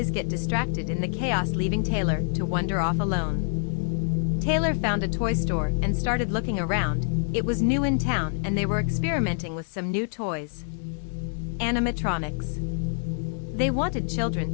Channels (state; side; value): silent; right; 61 dB below the other